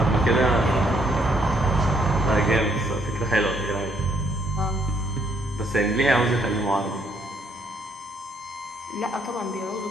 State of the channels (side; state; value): both; normal; correlation 0.69